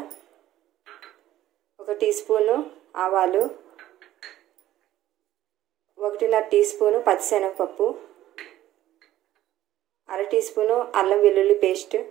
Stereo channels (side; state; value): left; quieter; 13.9 dB